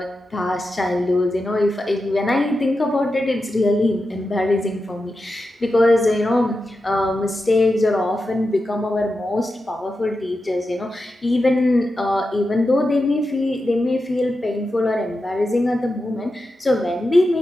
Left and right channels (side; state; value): both; normal; correlation 0.90